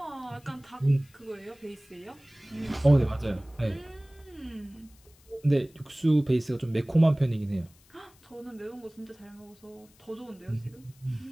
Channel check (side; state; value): left; noise; hiss, 29 dB below the sound